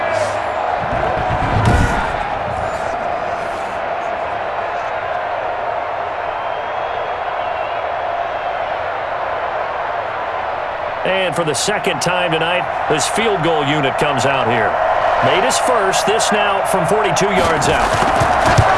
And for the 2nd time tonight, this field goal unit comes out here. Made his first, this now from 42 yards out.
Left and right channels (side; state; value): both; identical; correlation 1.00